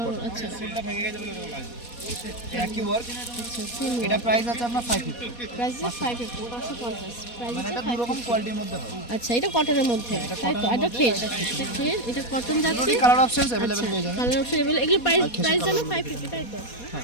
কটন। আচ্ছা একই ওয়ার্ক। সেম এটা প্রাইস আছে আপনার 550। প্রাইস আছে 550, 550, প্রাইস মানে আছে এটা দু রকম 550। কোয়ালিটির মধ্যে হয়। আচ্ছা এটা কটনের মধ্যে তাই তো? এটা খেস, এটা খেস, এটা কটন যাচ্ছে। কালার অপশনস अवेलेबल পেয়ে যাবেন। Colour option available. এগুলো প্রাইস আর খেসের প্রাইস জানো colour 550 তাই তো?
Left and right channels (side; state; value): right; late; 4.2 ms